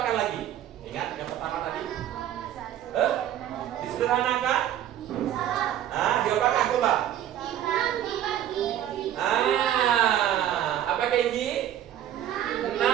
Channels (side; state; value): left; quieter; 11.3 dB